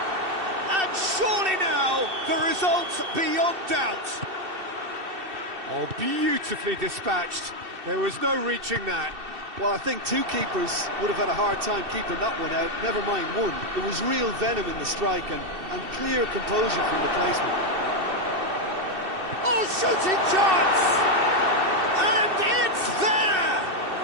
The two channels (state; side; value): late; left; 2.7 ms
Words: And surely now, the result's beyond doubt. Oh, beautifully dispatched. There was no reaching that. Well, I think two keepers would have had a hard time keeping that one out, never mind one. There was real venom in the strike and clear composure from the placement. Oh, shooting chance! And it's there!